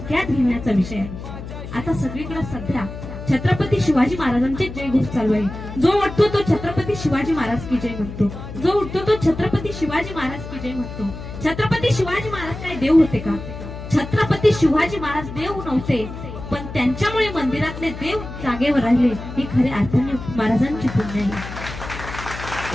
घेण्याचा विषय आहे. आता सगळीकडे सध्या छत्रपती शिवाजी महाराजांचे जयघोष चालू आहे. जो उठतो तो छत्रपती शिवाजी महाराज की जय म्हणतो, जो उठतो तो छत्रपती शिवाजी महाराज की जय म्हणतो. छत्रपती शिवाजी महाराज काय देव होते का? छत्रपती शिवाजी महाराज देव नव्हते, पण त्यांच्यामुळे मंदिरातले देव जागेवर राहिले. ही खऱ्या अर्थाने महाराजांची पुण्य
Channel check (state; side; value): noise; left; hum, 10 dB below the sound